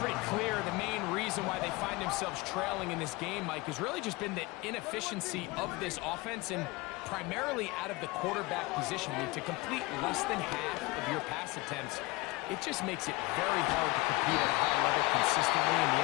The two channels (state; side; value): quieter; right; 22.7 dB